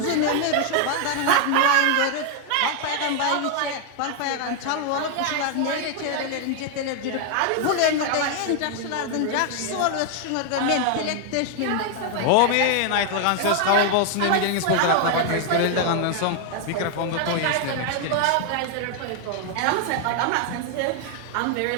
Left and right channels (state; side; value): different; both; correlation 0.00